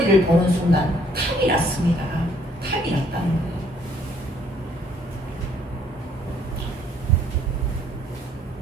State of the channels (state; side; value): normal; both; correlation 0.64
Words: 보는 순간 탐이 났습니다. 탐이 났다는 거예요.